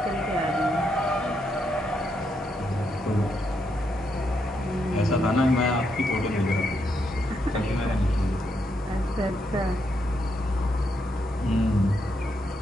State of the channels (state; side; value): normal; both; correlation 0.79